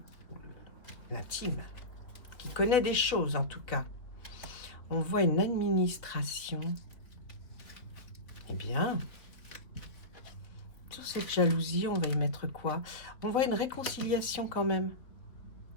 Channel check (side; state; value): right; late; 3.7 ms